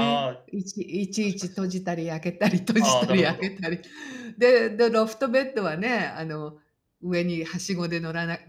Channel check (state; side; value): identical; both; correlation 1.00